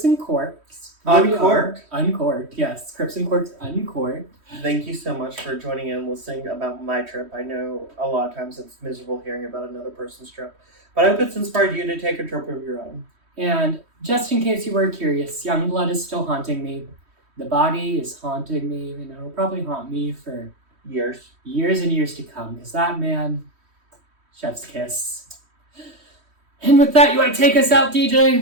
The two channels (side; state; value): left; late; 3.1 ms